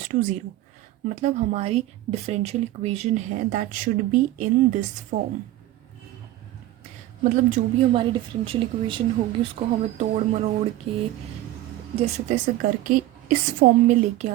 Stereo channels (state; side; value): quieter; left; 15.1 dB